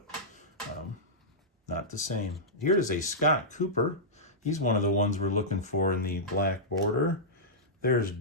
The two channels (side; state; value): both; normal; correlation -0.13